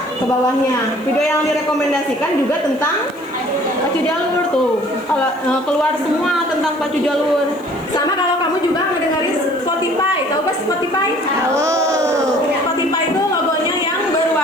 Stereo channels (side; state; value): left; noise; hiss, 28 dB below the sound